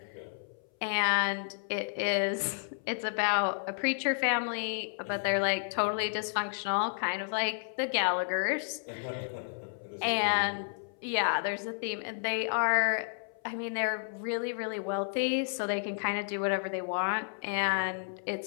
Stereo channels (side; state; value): right; silent; 57 dB below the other